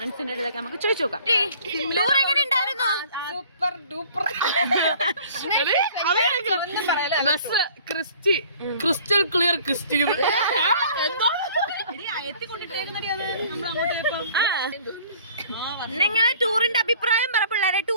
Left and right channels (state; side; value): inverted; both; correlation -0.53